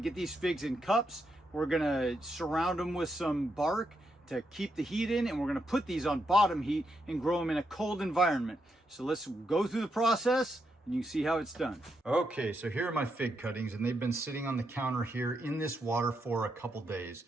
to get these figs in cups. We're going to surround them with some bark to keep the heat in, and we're going to put these on bottom heat and grow them in a cold environment. So let's go through the process and you can see how it's done. Okay, so here are my fig cuttings, and they've been sitting on the counter here in this water for a couple days.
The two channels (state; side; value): normal; both; correlation 0.82